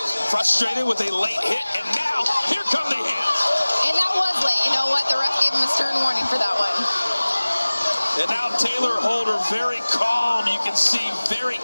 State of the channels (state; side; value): inverted; both; correlation -1.00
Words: frustrated with a late hit. And now, here come the hands. And that was late. You know what? The ref gave him a stern warning for that one. And now Taylor Holder very calm. You can see very